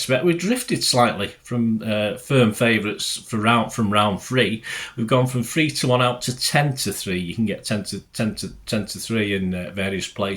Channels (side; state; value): both; identical; correlation 1.00